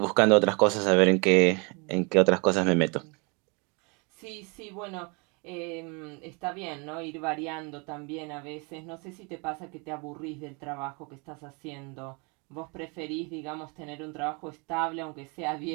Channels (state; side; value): quieter; left; 31.7 dB